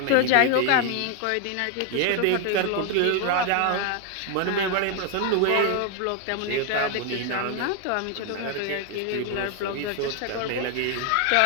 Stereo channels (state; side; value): different; both; correlation 0.01